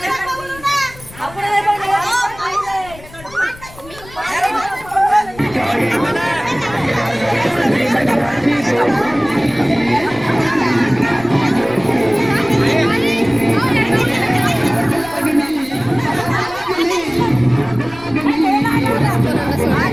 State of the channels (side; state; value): left; noise; rumble, 20 dB below the sound